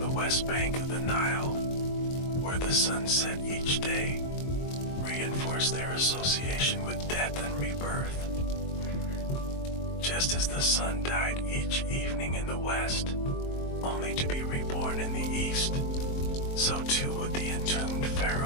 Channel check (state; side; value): late; right; 22 ms